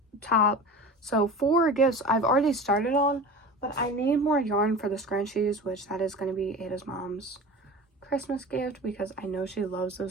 top. So 4 gifts I've already started on, but I need more yarn for the scrunchies, which that is going to be Ada's mom's Christmas gift because I know she loves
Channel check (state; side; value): normal; both; correlation 0.35